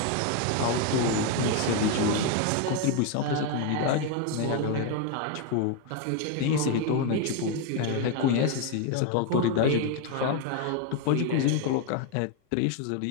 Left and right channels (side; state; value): both; different; correlation 0.01